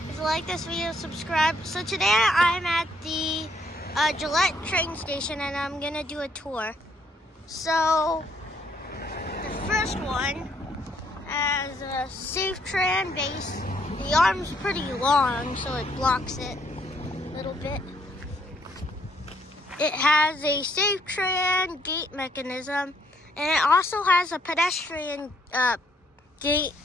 If you like this video, subscribe. So today I'm at the Gillette train station and I'm gonna do a tour. So the first one has a safe tran base. The arm's pretty long, so it blocks it a little bit. It has a safe tran gate mechanism, and it also has a pedestrian gate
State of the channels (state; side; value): normal; both; correlation 0.69